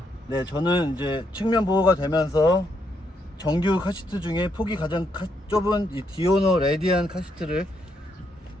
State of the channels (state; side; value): normal; both; correlation 0.77